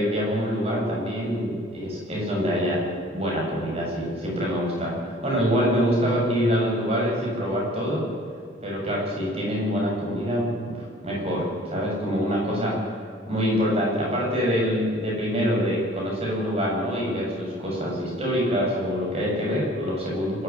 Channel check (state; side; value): normal; both; correlation 0.51